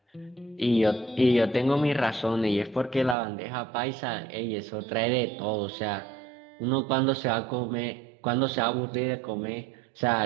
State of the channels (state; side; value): drops out; left; at 3.2 s